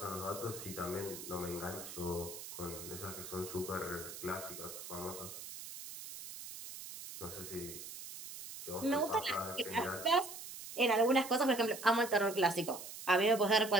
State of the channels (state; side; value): noise; right; hiss, 11 dB below the sound